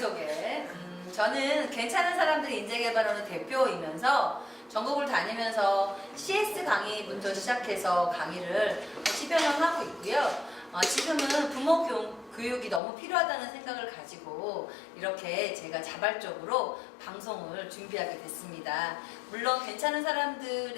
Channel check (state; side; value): drops out; right; at 12.8 s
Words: 저는 괜찮은 사람들 인재개발원의 대표이면서 전국을 다니면서 CS 강의부터 시작해서 강의를 10여 년 하고 있고요. 지금은 부모 교육이 너무 필요하다는 생각을 가지고 이렇게 제가 자발적으로 방송을 준비하게 됐습니다. 물론 괜찮은